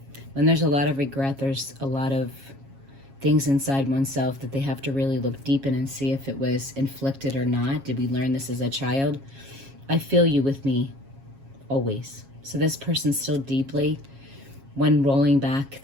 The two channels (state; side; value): late; left; 7.3 ms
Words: When there's a lot of regret, there's a lot of things inside oneself that they have to really look deep in and see if it was inflicted or not. Did we learn this as a child? I feel you with me always. So this person's still deeply, when rolling back